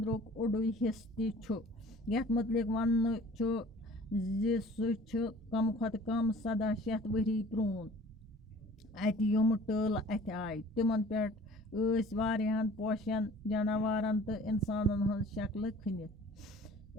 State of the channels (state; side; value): normal; both; correlation 0.48